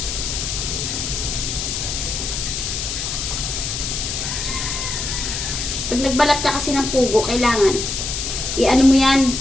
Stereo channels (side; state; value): left; noise; hiss, 3 dB below the sound